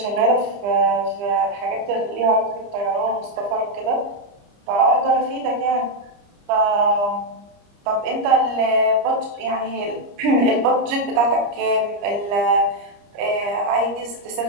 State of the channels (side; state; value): left; late; 29 ms